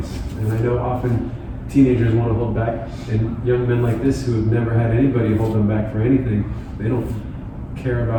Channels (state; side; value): identical; both; correlation 1.00